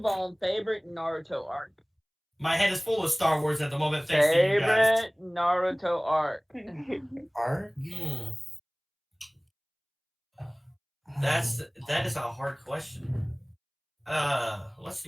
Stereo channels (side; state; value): both; identical; correlation 1.00